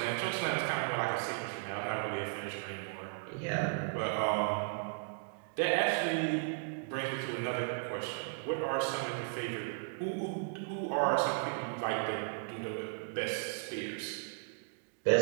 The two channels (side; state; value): left; silent; digital silence